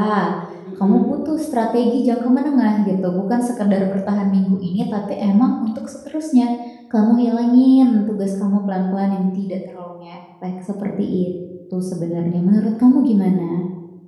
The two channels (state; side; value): identical; both; correlation 1.00